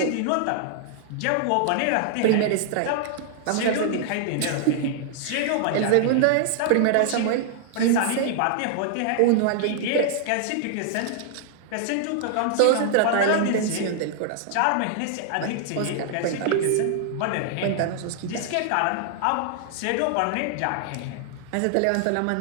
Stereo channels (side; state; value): both; different; correlation 0.00